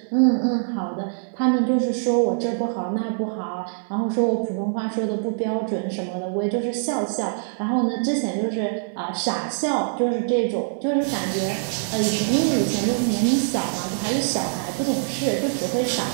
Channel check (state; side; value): silent; left; digital silence